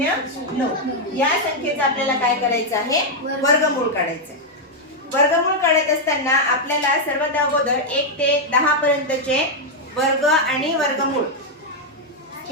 या संख्येचं आपल्याला काय करायचं आहे? वर्गमूळ काढायचं. वर्गमूळ काढत असताना आपल्याला सर्वात अगोदर 1 ते 10 पर्यंतचे वर्ग आणि वर्गमूळ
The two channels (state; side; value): normal; both; correlation 0.00